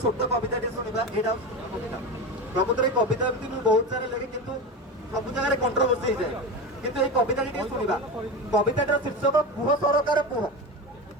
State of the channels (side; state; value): both; normal; correlation 0.22